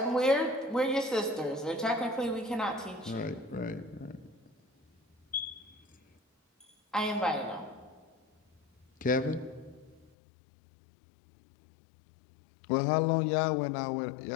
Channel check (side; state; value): right; drops out; at 10.1 s